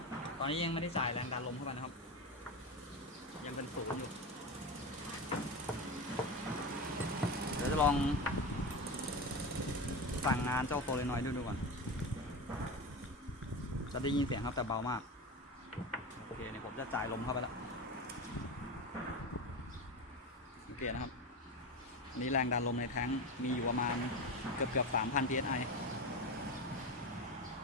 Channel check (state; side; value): normal; both; correlation 0.22